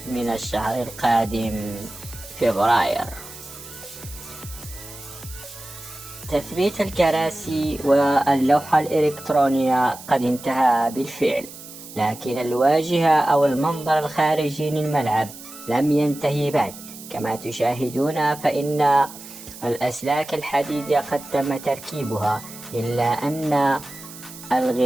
من الشهر القادم فبراير. تثبيت الكراسي واللوحة الإلكترونية قد انتهى بالفعل، لكن الواجهة أو المنظر الخارجي للملعب لم ينتهي بعد. كما تشاهدون فإن الأسلاك الحديدية قد تم تركيبها، إلا أن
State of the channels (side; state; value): right; noise; hiss, 15 dB below the sound